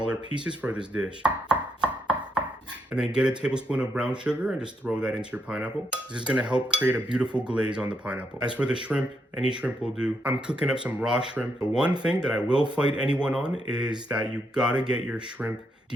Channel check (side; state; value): both; normal; correlation 0.78